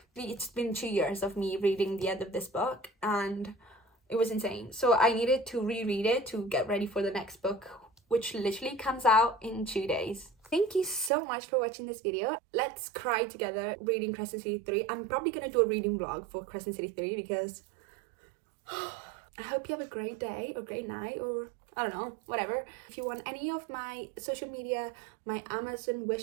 It's been 2 years of me reading the end of this book, and it was insane. So I needed to reread it to get ready for the next book, which literally comes out in 2 days. Thank you so much for watching this video. Let's cry together reading Crescent City 3. I'm probably gonna do a reading vlog for Crescent City 3 because I hope you have a great day or great night or I don't know, whatever. If you want any of my social media, my Amazon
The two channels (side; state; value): left; drops out; at 11.1 s